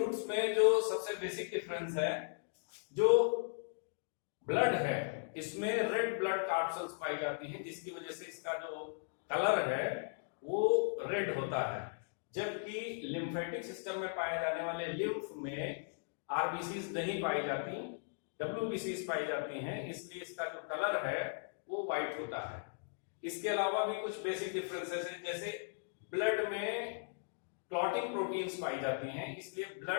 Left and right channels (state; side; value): silent; right; digital silence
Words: में जो सबसे बेसिक डिफरेंस है, जो ब्लड है इसमें रेड ब्लड कार्पल्स पाई जाती हैं, जिसकी वजह से इसका जो कलर है वो रेड होता है, जबकि लिम्फेटिक सिस्टम में पाए जाने वाले लिम्फ में आरबीसीज नहीं पाई जाती, डब्ल्यूबीसीज पाई जाती हैं, इसलिए इसका जो कलर है वो व्हाइट होता है। इसके अलावा भी कुछ बेसिक डिफरेंसेस हैं, जैसे ब्लड में क्लॉटिंग प्रोटीन्स पाई जाती हैं, इसलिए